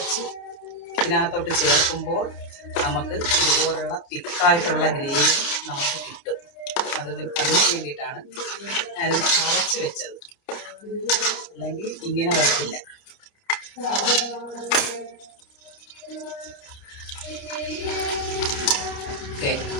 ഇതിനകത്തോട്ട് ചേർക്കുമ്പോൾ നമുക്ക് ഇതുപോലുള്ള തിക്കായിട്ടുള്ള ഗ്രേവി നമുക്ക് കിട്ടും. അതിന് വേണ്ടിയിട്ടാണ് ഞാനിത് ചതച്ച് വെച്ചത്. അല്ലെങ്കിൽ ഇങ്ങനെ വരത്തില്ല. ഓക്കെ,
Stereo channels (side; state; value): right; late; 29 ms